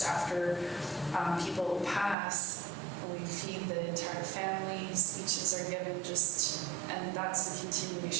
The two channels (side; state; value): left; drops out; at 2.1 s